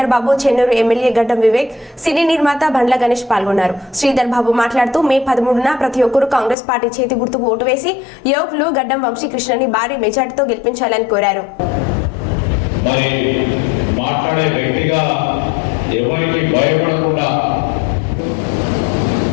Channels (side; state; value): right; drops out; at 6.6 s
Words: బాబు, చెన్నూరు ఎమ్మెల్యే గడ్డం వివేక్, సినీ నిర్మాత బండ్ల గణేష్ పాల్గొన్నారు. శ్రీధర్ బాబు మాట్లాడుతూ మే 13న ప్రతి ఒక్కరూ కాంగ్రెస్ పార్టీ చేతి గుర్తుకు ఓటు వేసి యువకులు గడ్డం వంశీకృష్ణని భారీ మెజార్టీతో గెలిపించాలని కోరారు. మరి మాట్లాడే వ్యక్తిగా ఎవరికి భయపడకుండా